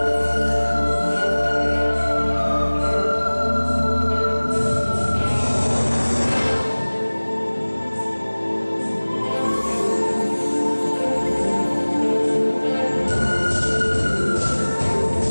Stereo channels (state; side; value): inverted; both; correlation -1.00